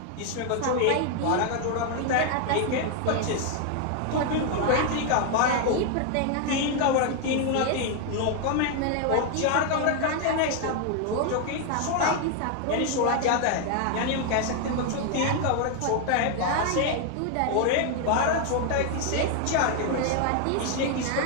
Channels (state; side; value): different; both; correlation 0.00